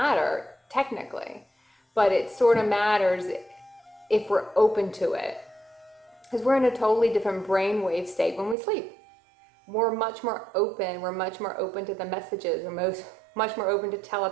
technically, but it sort of matters if we're open to it, because we're in a totally different brainwave state when we sleep. We're much more open. We're much more open to the messages. We're much more open to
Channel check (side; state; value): left; drops out; at 8.6 s